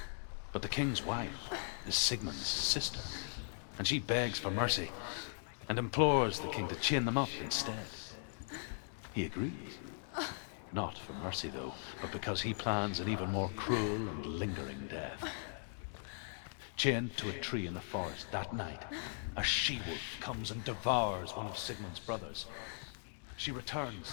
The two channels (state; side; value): silent; right; digital silence